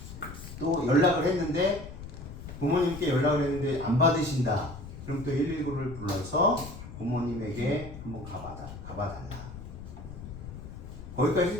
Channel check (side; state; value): left; noise; rumble, 12 dB below the sound